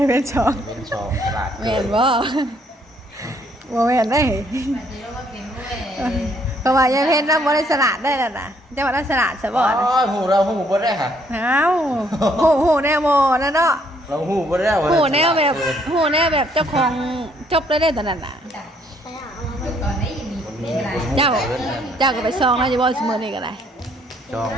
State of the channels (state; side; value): normal; both; correlation 0.67